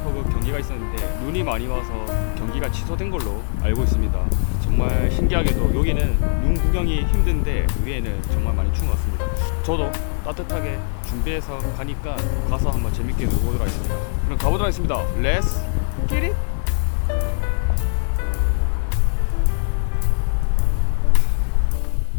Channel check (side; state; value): right; silent; 64 dB below the other